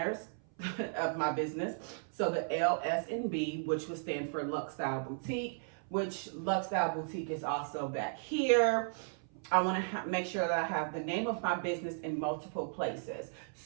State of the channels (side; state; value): left; silent; 54 dB below the other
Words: of my business. So the L, S, and B, which would stand for Lux Style Boutique, which Lux Style Boutique is also back here. I want to make sure that I have the name of my business in multiple places.